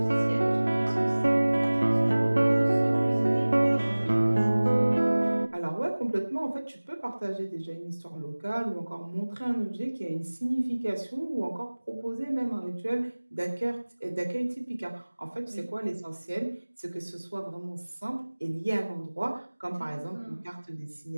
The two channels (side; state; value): both; inverted; correlation -1.00